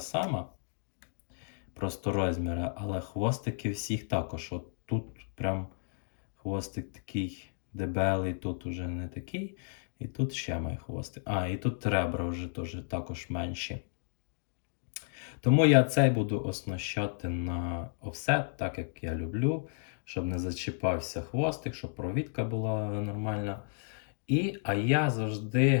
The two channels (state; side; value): silent; right; digital silence